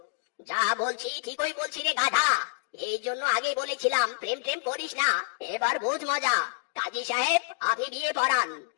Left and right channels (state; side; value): silent; right; digital silence